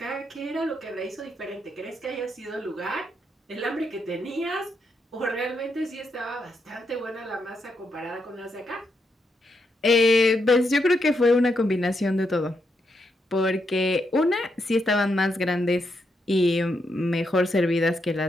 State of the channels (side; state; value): both; normal; correlation 0.81